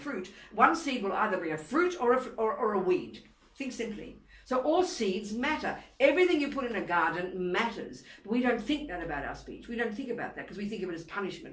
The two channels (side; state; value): both; identical; correlation 1.00